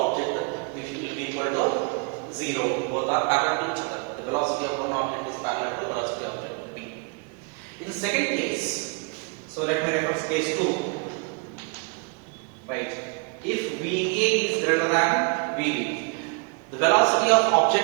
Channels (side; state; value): left; quieter; 33.7 dB